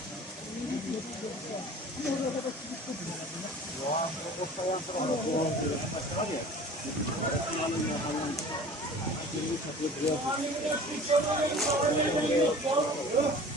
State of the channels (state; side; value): normal; both; correlation 0.43